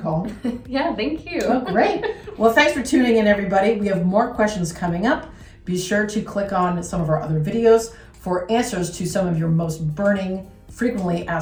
Yeah, thank you. Oh, great. Well, thanks for tuning in, everybody. We have more questions coming up. Be sure to click on some of our other videos for answers to some of your most burning, frequently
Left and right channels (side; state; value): both; identical; correlation 1.00